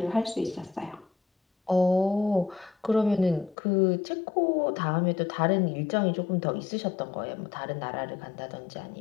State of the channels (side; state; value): right; drops out; at 3.6 s